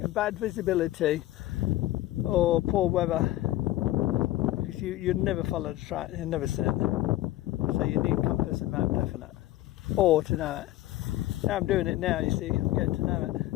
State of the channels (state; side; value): quieter; right; 15.7 dB